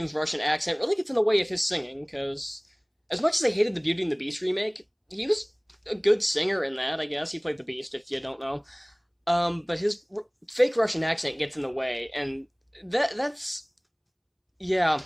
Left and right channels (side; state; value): both; identical; correlation 1.00